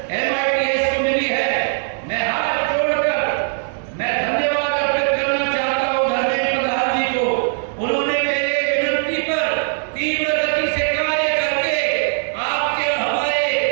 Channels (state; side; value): silent; left; 59 dB below the other